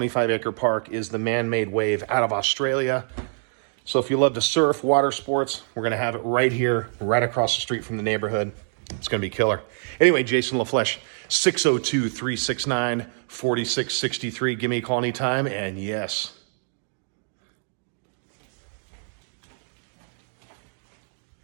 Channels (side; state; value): left; silent; digital silence